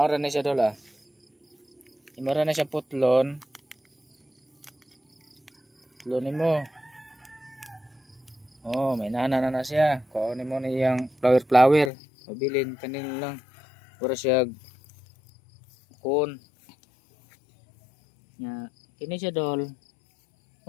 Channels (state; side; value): drops out; right; at 11.9 s